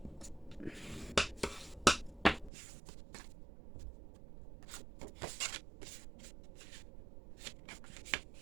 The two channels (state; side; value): drops out; left; at 2.5 s